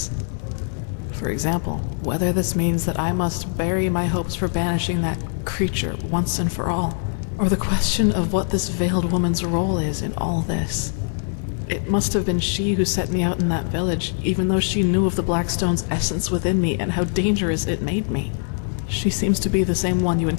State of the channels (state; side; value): silent; right; 64 dB below the other